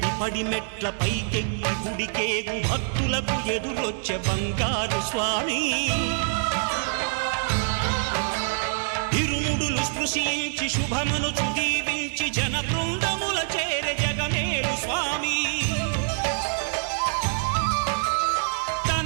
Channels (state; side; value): silent; left; 61 dB below the other